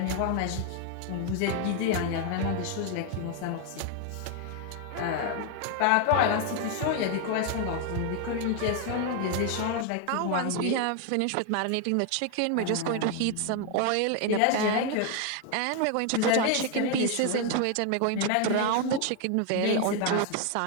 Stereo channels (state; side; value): different; both; correlation 0.00